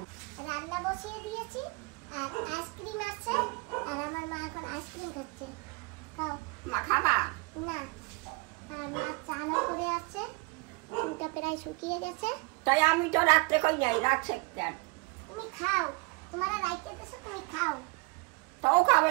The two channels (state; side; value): quieter; left; 28.1 dB